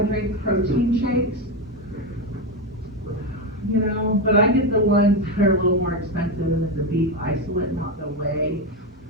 drink protein shakes. You know, but I get the ones that are a little more expensive than the beef isolate, not the whey,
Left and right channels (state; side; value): normal; both; correlation 0.12